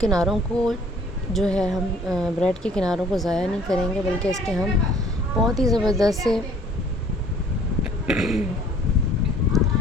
को जो है हम ब्रेड के किनारों को ज़ाया नहीं करेंगे, बल्कि इसके हम बहुत ही ज़बरदस्त से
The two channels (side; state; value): both; normal; correlation 0.55